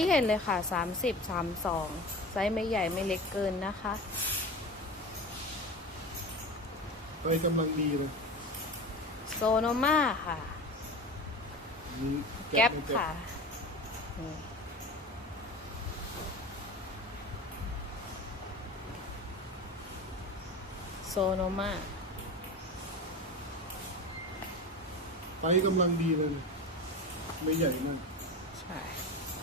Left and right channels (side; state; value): both; normal; correlation 0.30